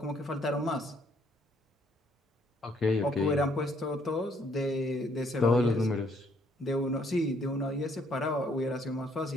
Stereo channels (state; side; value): normal; both; correlation 0.67